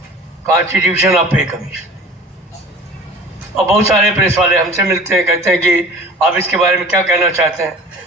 कॉन्स्टिट्यूशन ऑफ पे कमीशन। और बहुत सारे प्रेस वाले हमसे मिलते हैं, कहते हैं कि आप इसके बारे में क्या कहना चाहते हैं।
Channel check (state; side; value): normal; both; correlation 0.43